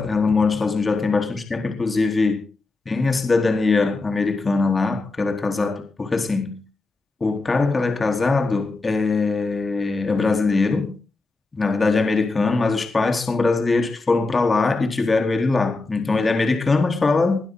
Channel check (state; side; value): quieter; right; 3.5 dB